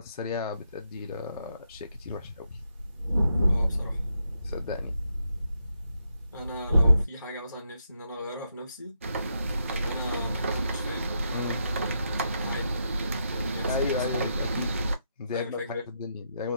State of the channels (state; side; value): inverted; both; correlation -0.80